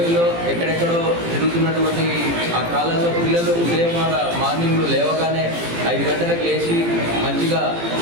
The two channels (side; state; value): left; late; 18 ms